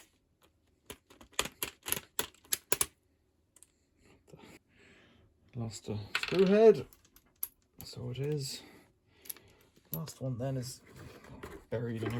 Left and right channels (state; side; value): identical; both; correlation 1.00